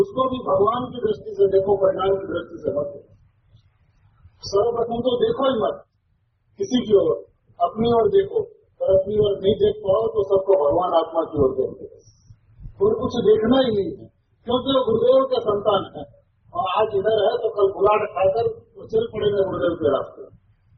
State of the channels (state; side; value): identical; both; correlation 1.00